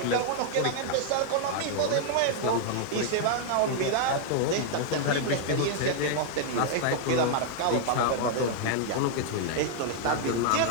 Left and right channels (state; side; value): different; both; correlation 0.00